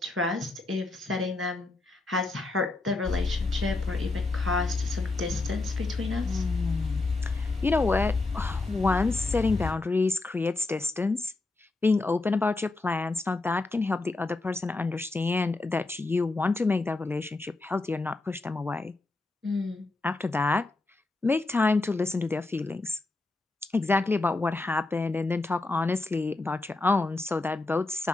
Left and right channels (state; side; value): quieter; right; 3.2 dB